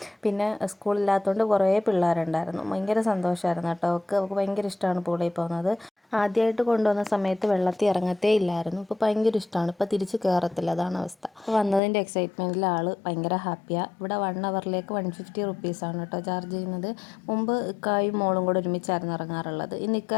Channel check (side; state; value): right; drops out; at 11.8 s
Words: പിന്നെ സ്കൂളില്ലാത്തതുകൊണ്ട് കുറേ പിള്ളേരുണ്ടായിരുന്നു. ഭയങ്കര സന്തോഷമായിരുന്നു കേട്ടോ. അവൾക്ക് ഭയങ്കര ഇഷ്ടമാണ് പൂളിൽ പോകുന്നത്. ആദ്യമായിട്ട് കൊണ്ടുവന്ന സമയത്ത് വെള്ളത്തിൽ ഇറങ്ങത്തേ ഇല്ലായിരുന്നു. ഇപ്പോൾ ഭയങ്കര ഇഷ്ടമാണ്. ഇപ്പോൾ തിരിച്ച് കയറത്തില്ല, അതാണ് അവസ്ഥ. അപ്പോൾ വന്നതിൻ്റെ എക്സൈറ്റ്മെൻറ്റിൽ ആൾ ഭയങ്കര ഹാപ്പിയാണ്. ഇവിടെ 1 അവറിലേക്ക് 150 റുപ്പീസാണ് കേട്ടോ ചാർജ് ചെയ്യുന്നത്. മുമ്പ് ഇക്കായും മോളും കൂടെ ഒരുമിച്ചായിരുന്നു ഇറങ്ങാറുള്ളത്. ഇന്ന് ഇക്ക